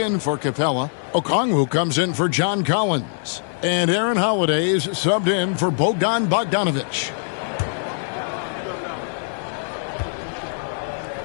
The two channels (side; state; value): right; silent; 64 dB below the other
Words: for Capella. Okongwu comes in for John Collins. And Aaron Holiday's subbed in for Bogdan Bogdanovich.